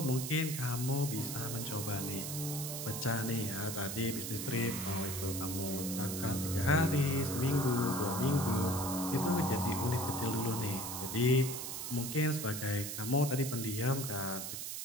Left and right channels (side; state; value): right; noise; hiss, 5 dB below the sound